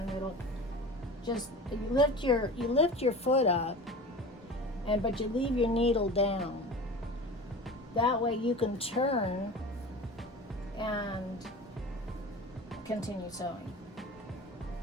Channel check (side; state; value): both; normal; correlation 0.35